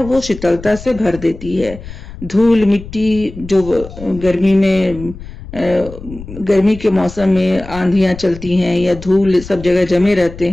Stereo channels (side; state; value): left; noise; rumble, 14 dB below the sound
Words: वो शीतलता से भर देती है। धूल मिट्टी जो गर्मी के मौसम में आंधियां चलती हैं या धूल सब जगह जमे रहते